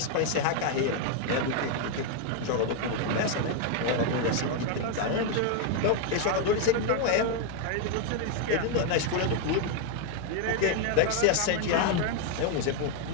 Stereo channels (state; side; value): different; both; correlation 0.00